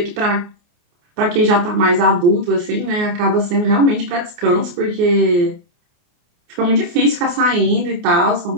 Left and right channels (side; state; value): left; late; 29 ms